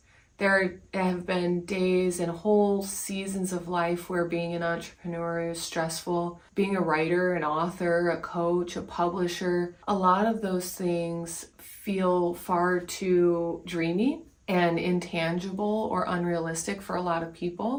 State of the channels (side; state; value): both; identical; correlation 1.00